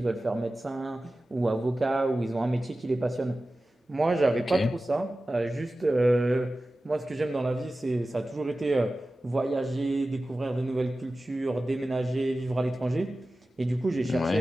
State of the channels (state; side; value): normal; both; correlation 0.95